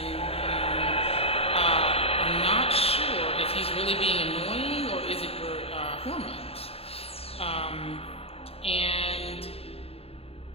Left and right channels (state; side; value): late; right; 0.28 ms